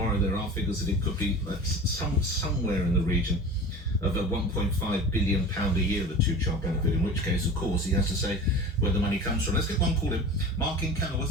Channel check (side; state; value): both; normal; correlation 0.36